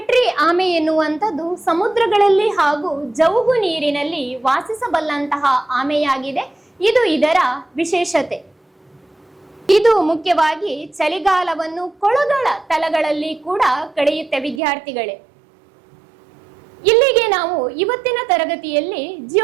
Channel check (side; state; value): left; drops out; at 14.6 s